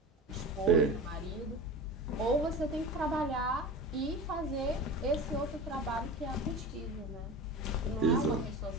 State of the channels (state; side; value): normal; both; correlation 0.32